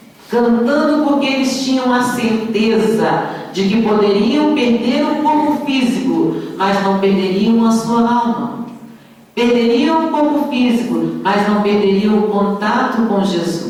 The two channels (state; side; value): identical; both; correlation 1.00